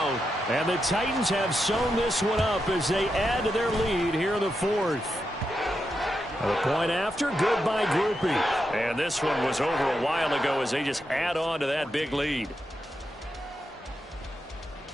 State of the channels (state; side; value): normal; both; correlation 0.86